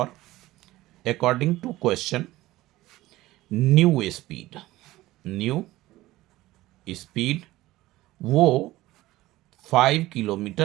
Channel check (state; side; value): quieter; left; 17.2 dB